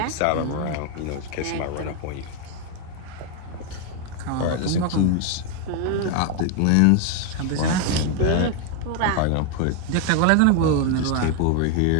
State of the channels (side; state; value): both; different; correlation 0.01